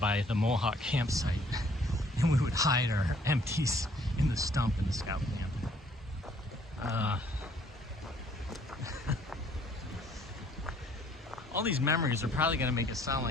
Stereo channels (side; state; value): both; normal; correlation 0.62